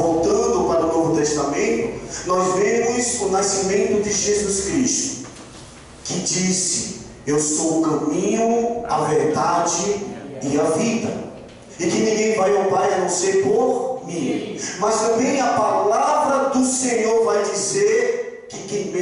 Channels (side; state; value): both; identical; correlation 1.00